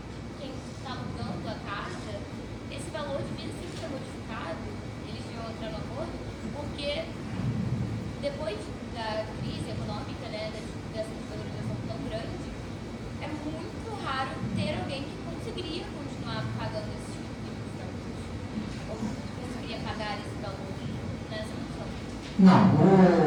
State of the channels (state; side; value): identical; both; correlation 1.00